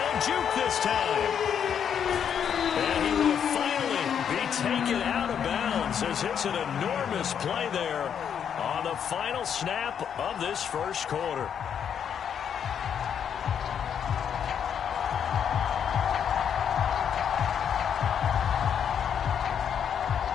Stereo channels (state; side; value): quieter; right; 8.2 dB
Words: a juke this time. And he will finally be taken out of bounds as it's an enormous play there on the final snap of this first quarter.